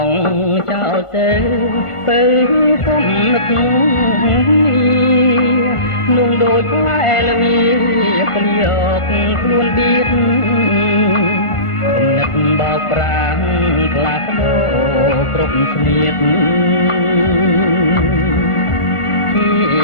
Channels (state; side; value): late; right; 1.5 ms